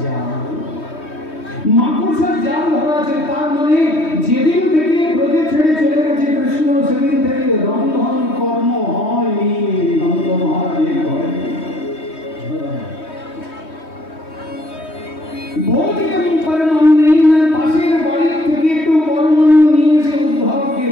জাল ধরা আছে। তার মানে যেদিন থেকে ব্রজে ছেড়ে চলে গেছে কৃষ্ণ, সেদিন থেকে রন্ধন কর্ম হয়নি নন্দ মহারাজের ঘরে। ভৌতিকম পরমান্নেন, পাশের বাড়ি থেকে একটু পরমান্ন নিয়ে এসে উদ্ধবকে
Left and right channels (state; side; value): late; right; 3.2 ms